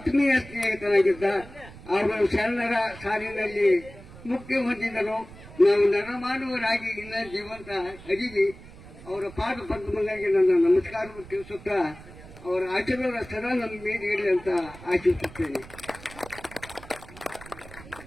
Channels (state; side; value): noise; right; rumble, 18 dB below the sound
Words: ಸ್ನೇಹಿತರಾಗಿದ್ದ. ಅವರು ಶರಣರ ಸಾಲಿನಲ್ಲಿ ಮುಕ್ತಿ ಹೊಂದಿದರು. ನಾವು ನರಮಾನವರಾಗಿ ಇನ್ನ ಜೀವಂತ ಅಡಿಗೆ ಅವರ ಪಾದ ಪದ್ಮಗಳಿಗೆ ನನ್ನ ನಮಸ್ಕಾರವನ್ನು ತಿಳಿಸುತ್ತಾ ಅವರ ಆಶೀರ್ವಾದ ಸದಾ ನಮ್ಮ ಮೇಲೆ ಇರಲಿ ಅಂತ ಆಶಿಸುತ್ತೇನೆ.